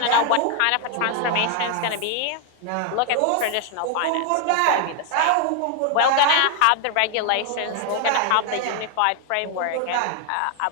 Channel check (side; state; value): both; different; correlation 0.00